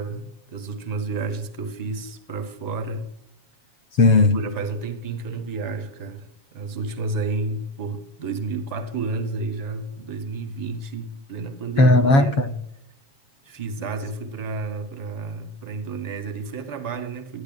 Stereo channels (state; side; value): late; right; 7.3 ms